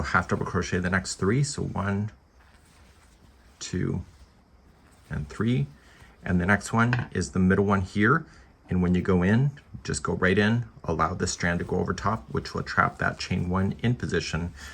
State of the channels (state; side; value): identical; both; correlation 1.00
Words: half double crochet the next 3. So 1, 2, and 3. And the next one is the middle one here. And when you go in, just go right in, allow the strand to go over top, which will trap that chain 1 in position.